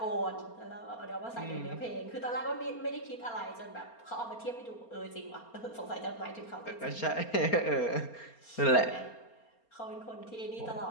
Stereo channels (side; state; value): right; late; 4.3 ms